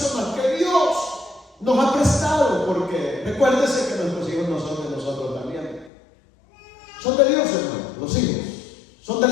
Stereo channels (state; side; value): drops out; right; at 5.9 s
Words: que Dios nos ha prestado, porque recuérdese que nuestros hijos no son de nosotros también. Son de Dios, hermanos, los hijos. Son